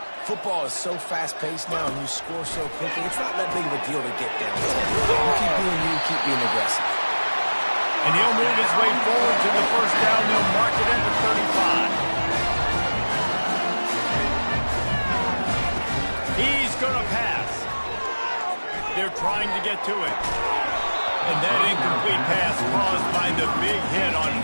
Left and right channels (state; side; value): inverted; both; correlation -1.00